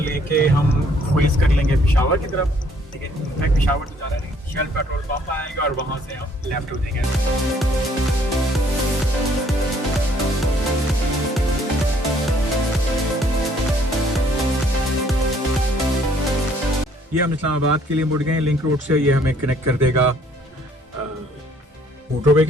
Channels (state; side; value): normal; both; correlation 0.63